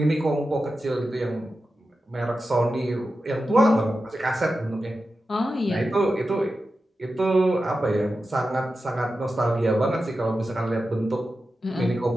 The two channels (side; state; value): both; normal; correlation 0.92